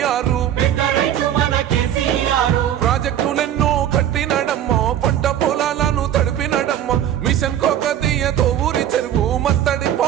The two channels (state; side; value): quieter; left; 10.8 dB